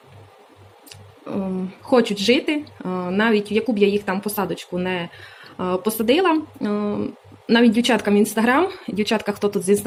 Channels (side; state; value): both; identical; correlation 1.00